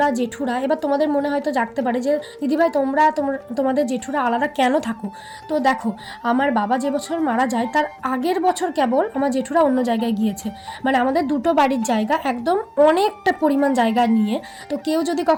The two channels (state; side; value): identical; both; correlation 1.00